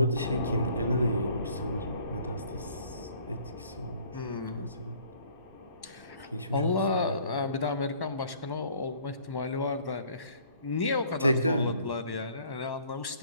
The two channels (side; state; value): both; inverted; correlation -0.56